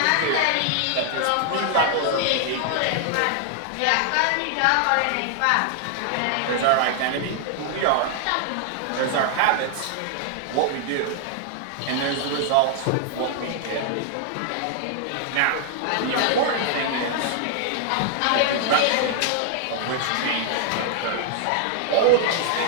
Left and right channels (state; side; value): different; both; correlation 0.00